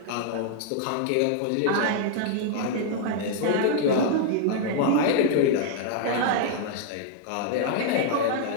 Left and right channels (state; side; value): different; both; correlation 0.00